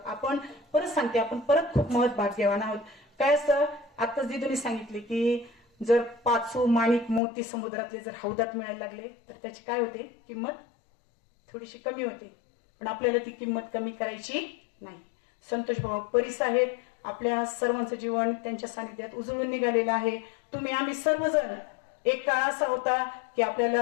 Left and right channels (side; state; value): right; drops out; at 7.2 s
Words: आपण परत सांगते, आपण परत खूप महत् भाग्यवान आहोत. काय असतं, आताच दिदूने सांगितले की जर 5 माणिक मोती समुद्रातले जर हौदात मिळायला लागले तर त्याची काय होते, किंमत थोडीशी कमी होते. पण आपल्याला ती किंमत कमी करायची नाही. संतोष भाऊ परीस आहेत, आपल्या सर्वांचं जीवन त्यांच्या सानिध्यात उजळून निघालेलं आहे. आम्ही सर्वजण, एक काळ असा होता की